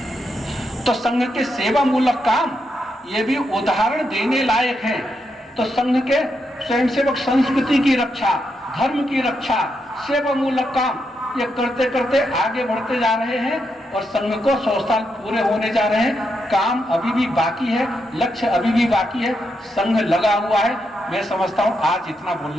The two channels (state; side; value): normal; both; correlation 0.82